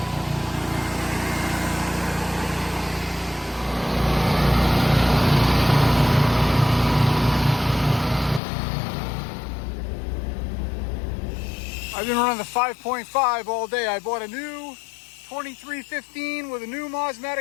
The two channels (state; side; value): drops out; right; at 8.4 s